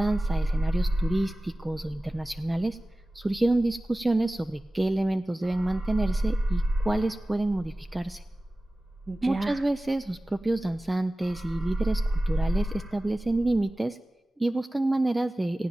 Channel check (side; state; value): both; normal; correlation 0.97